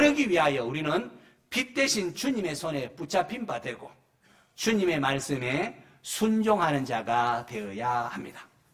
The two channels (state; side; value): identical; both; correlation 1.00